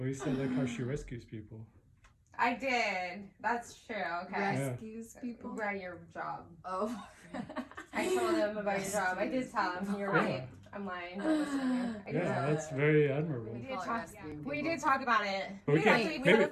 you said like how she rescues people. I did. That's true. Okay. Rescues people. Right, your job. Oh. I told him about your job. I did tell him. You're right. I'm lying. Don't listen to me. I did Yeah, tell that's him. very admirable. We did talk about it. But we We can't- actually we maybe- had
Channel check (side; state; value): both; identical; correlation 1.00